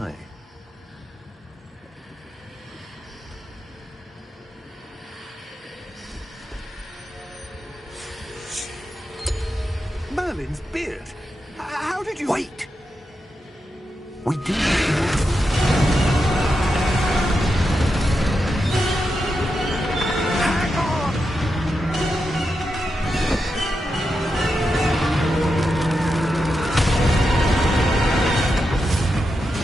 Merlin's beard. How did you... Wait! We do. Hang on!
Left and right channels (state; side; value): normal; both; correlation 0.87